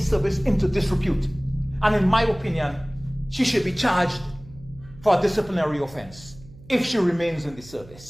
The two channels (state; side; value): noise; right; hum, 21 dB below the sound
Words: service into disrepute. And in my opinion, she should be charged for a disciplinary offense if she remains in the